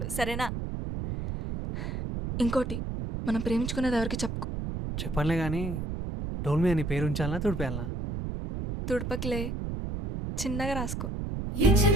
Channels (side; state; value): right; noise; rumble, 4 dB below the sound